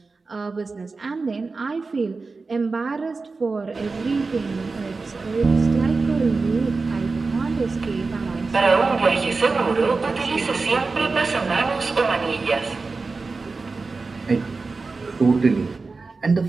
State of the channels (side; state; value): left; quieter; 4.1 dB